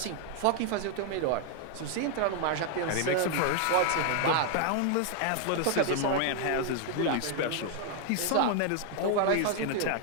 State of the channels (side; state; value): both; different; correlation 0.00